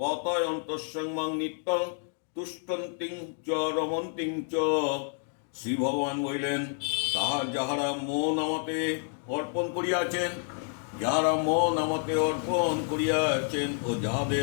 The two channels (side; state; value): right; silent; 56 dB below the other